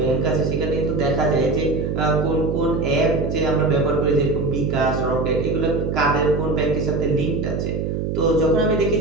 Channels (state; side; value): noise; right; hum, 2 dB below the sound